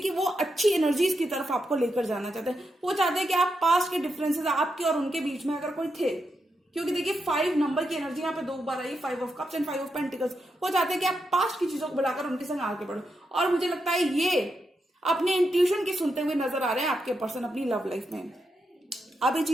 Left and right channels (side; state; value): both; normal; correlation 0.85